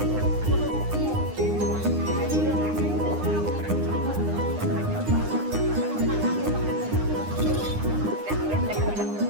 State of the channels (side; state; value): left; late; 9.8 ms